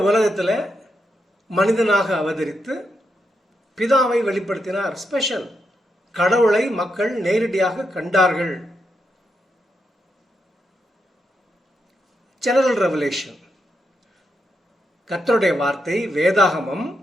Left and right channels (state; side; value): normal; both; correlation 0.83